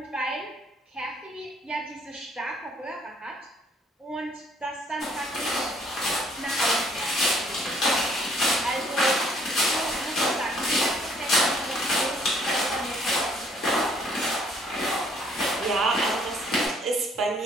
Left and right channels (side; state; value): both; normal; correlation 0.63